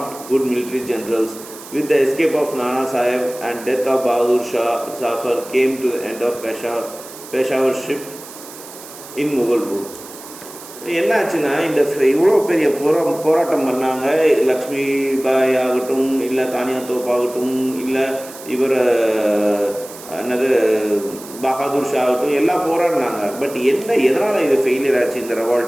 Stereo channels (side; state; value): right; noise; hiss, 16 dB below the sound